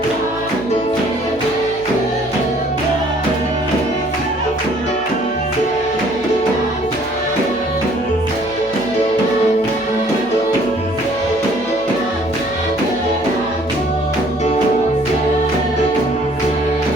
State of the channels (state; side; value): noise; right; hum, 24 dB below the sound